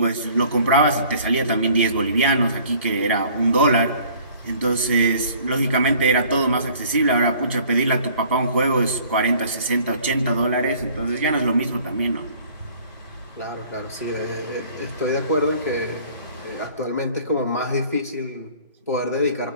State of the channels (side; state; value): both; inverted; correlation -0.53